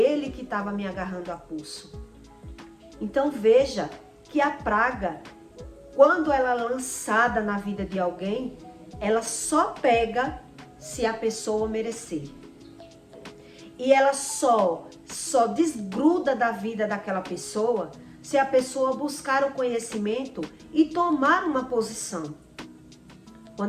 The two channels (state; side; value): identical; both; correlation 1.00